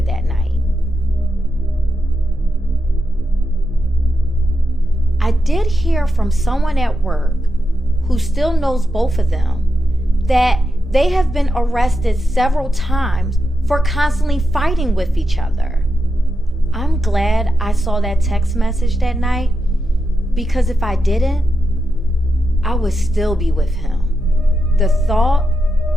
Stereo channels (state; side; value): normal; both; correlation 0.87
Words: that night. I did hear from someone at work who still knows both of them that they have been arrested several times for constantly fighting with each other. I'm glad I saw that text message that night, because if I didn't, I would still be with him. The thought,